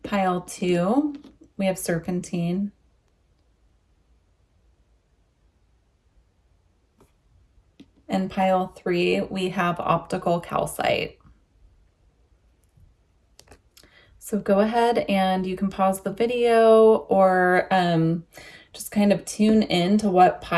Pile 2, we have serpentine. And pile 3, we have optical calcite. So go ahead and you can pause the video or just kind of tune in to what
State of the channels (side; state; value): both; identical; correlation 1.00